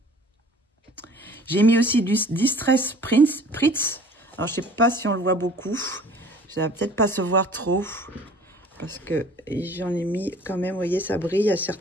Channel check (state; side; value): normal; both; correlation 0.49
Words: J'ai mis aussi du distress Pritz. Alors, je sais pas si on le voit beaucoup. Ça va peut-être pas se voir trop. Parce que j'en ai mis quand même, vous voyez, ça brille à